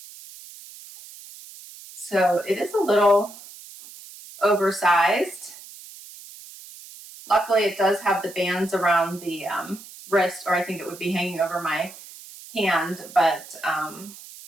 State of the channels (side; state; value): right; noise; hiss, 17 dB below the sound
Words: So it is a little oversized. Luckily, it does have the bands around the wrist, or I think it would be hanging over my hand, but I